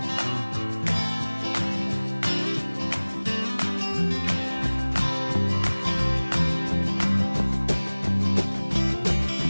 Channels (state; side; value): inverted; both; correlation -1.00